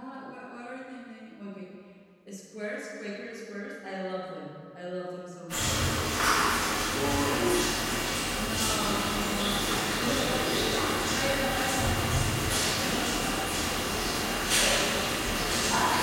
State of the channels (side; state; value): both; identical; correlation 1.00